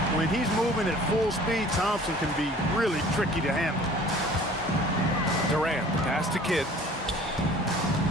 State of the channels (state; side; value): normal; both; correlation 0.49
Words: When he's moving at full speed, Thompson can be really tricky to handle. Durant, pass to Kidd.